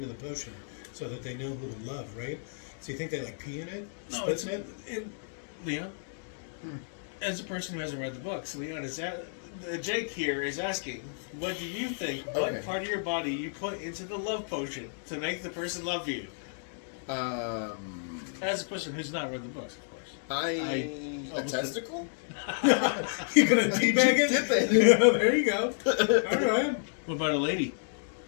potion so that they know who to love, right? So you think they like pee in it? No, Spit it's in it? Leon. As a person who hasn't read the books, Leon Jake here is asking, what do you think? Okay. What part of your body you put into the love potion to make the person love you? As a person who's not read the books, of course. A testicle? You gonna teabag it? Dip it. Yeah, there you go. All right. What about a lady?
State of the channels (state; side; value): silent; right; digital silence